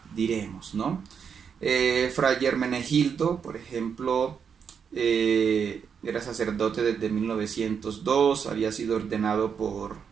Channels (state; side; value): quieter; left; 6.9 dB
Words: diremos, ¿no? Fray Hermenegildo, por ejemplo, era sacerdote desde 1902, había sido ordenado por